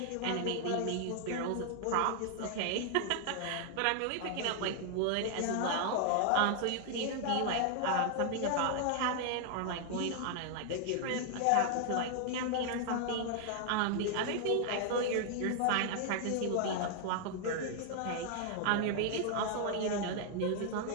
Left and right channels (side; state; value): both; different; correlation 0.00